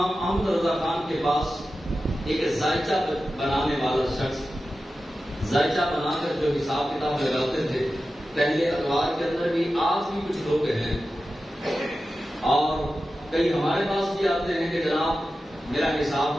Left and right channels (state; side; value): normal; both; correlation 0.93